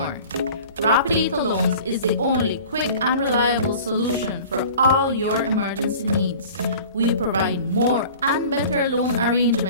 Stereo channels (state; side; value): inverted; both; correlation -0.43